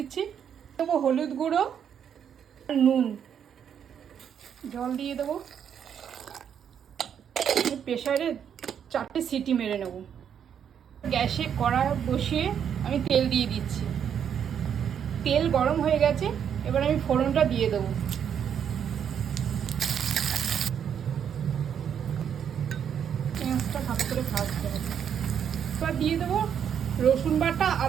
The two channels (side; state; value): left; quieter; 8.4 dB